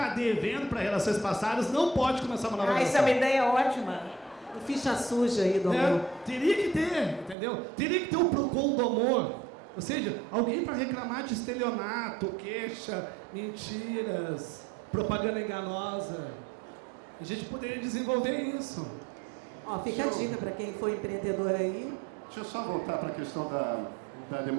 devendo para relações passadas não pode começar uma nova relação. Essa é uma ideia ótima. Ficha suja aí do amor. Teria que ter, entendeu? Teria que ter um PROCON do amor. Ou seja, alguém para reclamar de estelionato, queixa, mentiras, propaganda enganosa. A gente poderia desenvolver isso. Ó, fica a dica para quem for empreendedor aí. Deixa eu só voltar para a questão da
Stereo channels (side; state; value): left; drops out; at 7.4 s